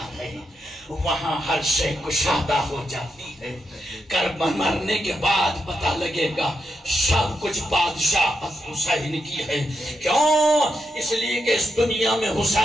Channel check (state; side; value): normal; both; correlation 0.84